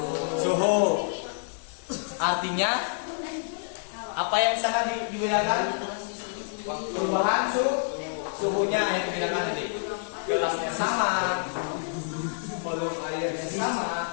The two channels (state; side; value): silent; right; digital silence